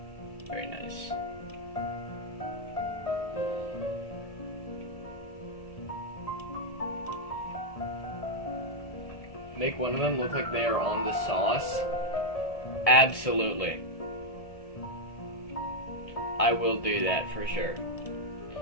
Very nice. make one of them look like they are on the sauce, absolutely. I will do that for sure.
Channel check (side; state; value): right; late; 1.7 ms